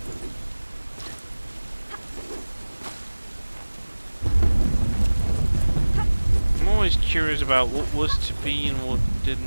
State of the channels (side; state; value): both; inverted; correlation -1.00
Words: I'm always curious about what was to be and what